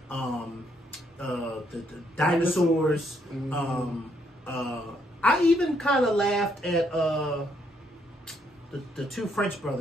the Dinosaurs. I even kind of laughed at the two French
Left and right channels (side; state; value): both; normal; correlation 0.72